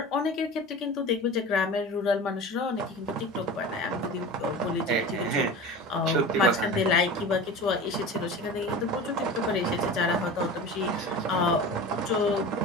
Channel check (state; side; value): normal; both; correlation 0.34